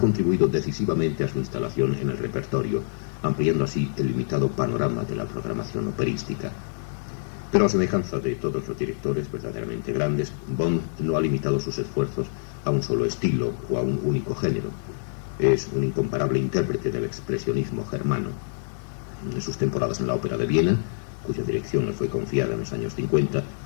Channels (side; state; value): right; silent; digital silence